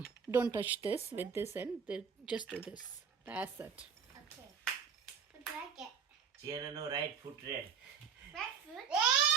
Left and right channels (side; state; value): left; quieter; 6.7 dB